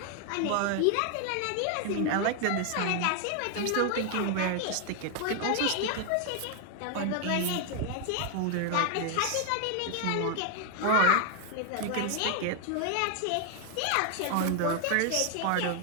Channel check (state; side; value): different; both; correlation 0.00